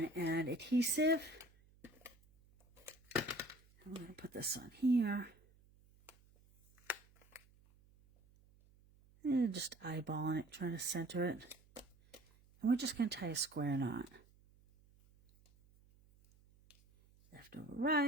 to add adhesive. And we're going to put this on here. And just eyeballing it, trying to center it. And we're just going to tie a square knot. Left over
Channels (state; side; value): noise; right; hum, 28 dB below the sound